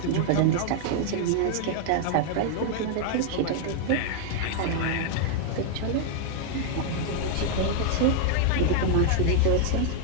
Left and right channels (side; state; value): both; different; correlation 0.00